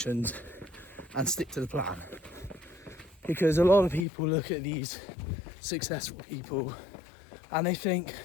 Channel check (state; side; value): drops out; right; at 4.0 s